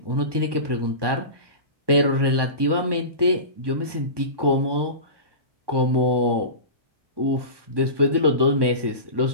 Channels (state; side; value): late; left; 1.2 ms